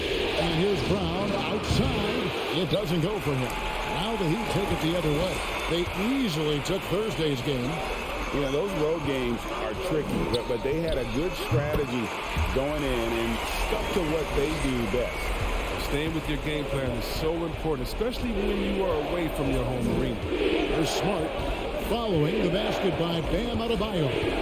And here's Brown outside. It doesn't go for him. Now the Heat take it the other way. They easily took Thursday's game. You know, those road games are tricky, but they had a good strategy going in and stuck to what they do best. Staying with your game plan is so important, especially when you are away from your home arena. They're Smart following the basket by Bam Adebayo.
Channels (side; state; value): both; identical; correlation 1.00